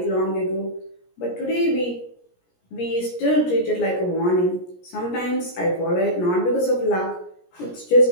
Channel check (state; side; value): late; right; 17 ms